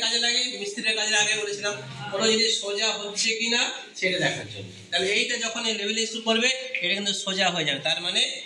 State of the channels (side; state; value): both; identical; correlation 1.00